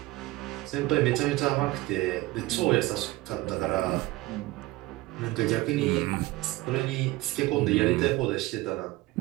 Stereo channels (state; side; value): quieter; left; 19.0 dB